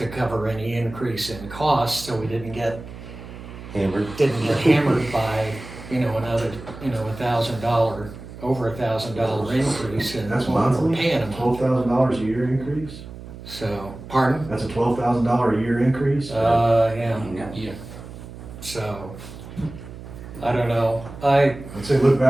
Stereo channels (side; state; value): right; noise; hum, 14 dB below the sound